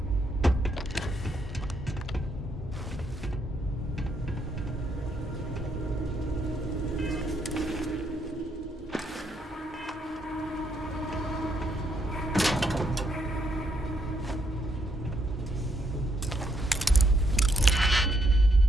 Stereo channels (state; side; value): normal; both; correlation 0.75